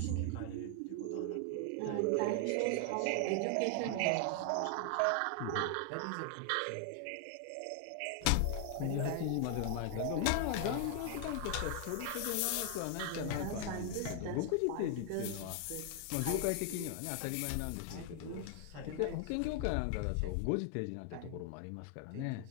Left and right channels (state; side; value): different; both; correlation 0.00